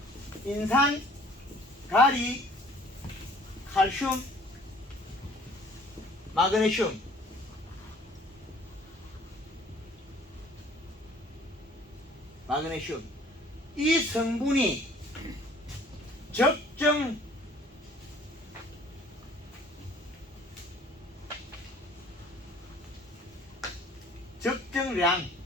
인산, 가리, 칼슘, 마그네슘, 이 성분이 적정 적정량,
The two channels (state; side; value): normal; both; correlation 0.54